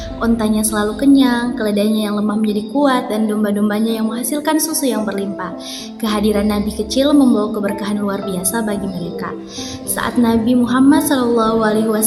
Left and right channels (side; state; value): both; identical; correlation 1.00